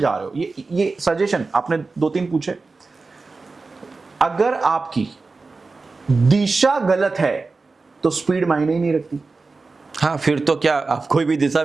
रहे हो। ये सजेशन आपने 2-3 पूछे। अगर आपकी दिशा गलत है तो स्पीड मायने ही नहीं रखती। हाँ, फिर तो क्या आप कोई भी दिशा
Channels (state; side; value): quieter; left; 3.9 dB